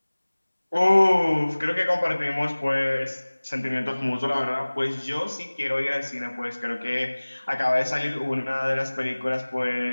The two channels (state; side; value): inverted; both; correlation -1.00